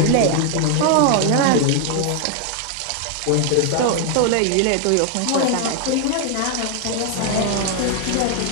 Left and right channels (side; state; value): both; different; correlation 0.00